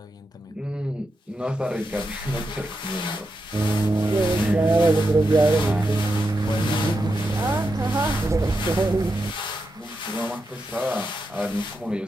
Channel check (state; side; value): normal; both; correlation 0.87